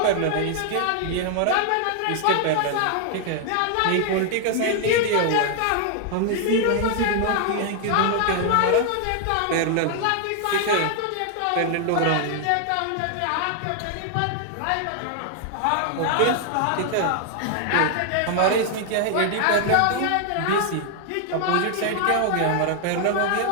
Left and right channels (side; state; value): both; different; correlation 0.00